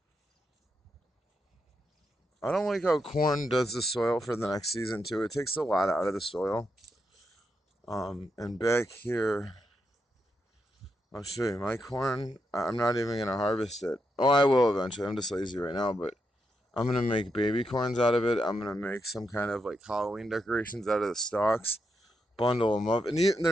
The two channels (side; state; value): both; normal; correlation 0.82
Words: I don't like how corn does the soil for the next season too. It takes a lot out of the soil. And back here, I'll show you my corn. I'm not even gonna harvest it. Oh, I will eventually. I'm just lazy right now, but I'm gonna make baby corns out of it. I'm gonna make some kind of like Halloween decorations out of the stalks, bundle them up, and